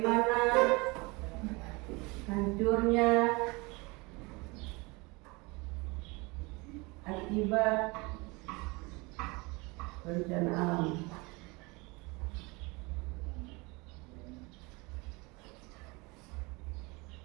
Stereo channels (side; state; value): left; quieter; 26.1 dB